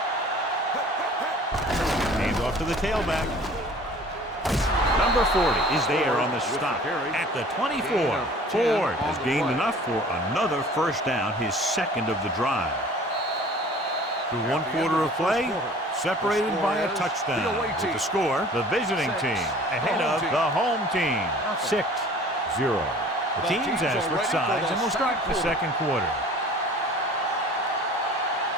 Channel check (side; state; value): both; normal; correlation 0.48